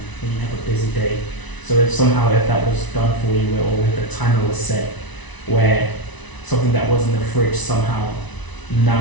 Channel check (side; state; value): right; late; 1.0 ms